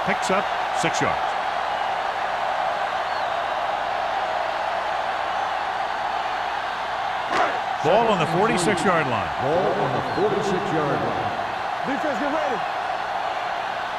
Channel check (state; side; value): identical; both; correlation 1.00